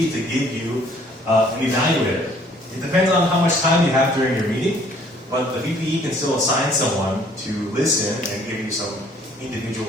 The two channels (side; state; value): both; normal; correlation 0.59